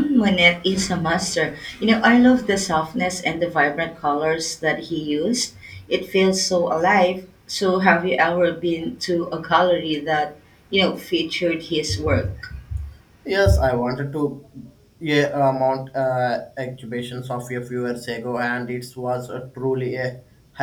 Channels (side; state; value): both; identical; correlation 1.00